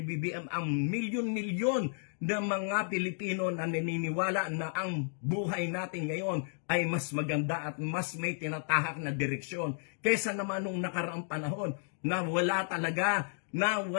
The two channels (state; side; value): silent; right; digital silence